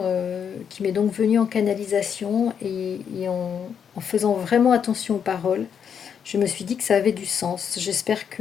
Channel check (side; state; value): right; quieter; 7.6 dB